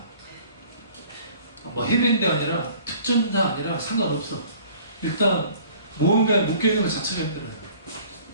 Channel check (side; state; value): both; inverted; correlation -0.52